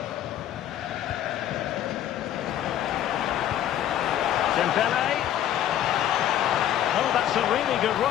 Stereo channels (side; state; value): right; quieter; 11.4 dB